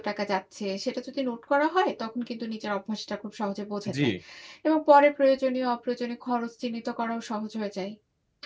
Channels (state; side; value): identical; both; correlation 1.00